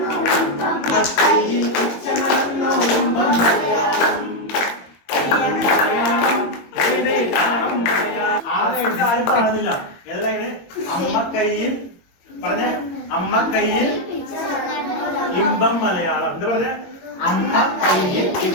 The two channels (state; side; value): late; right; 22 ms